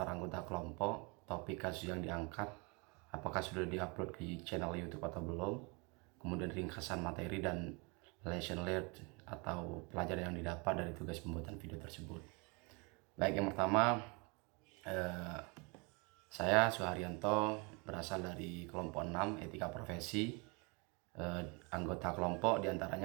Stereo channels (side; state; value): left; quieter; 30.6 dB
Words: anggota kelompok, topik kasus yang diangkat, apakah sudah diupload di channel YouTube atau belum, kemudian ringkasan materi dan lesson learned atau pelajaran yang didapat dari tugas pembuatan video tersebut. Baik, yang pertama, saya Suharyanto, berasal dari kelompok 6 etika profesi. Anggota kelompok